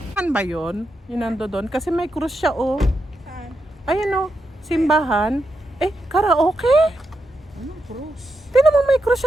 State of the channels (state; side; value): normal; both; correlation 0.85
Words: Saan ba yun? Yung nando doon? Kasi may krus siya, oh. Saan? Ayan, oh. Simbahan. Eh, karaoke? Anong cross? Tingnan mo, may krus